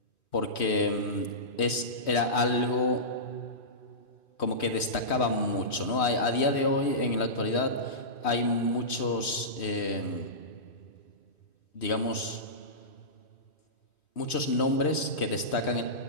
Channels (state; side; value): late; right; 3.1 ms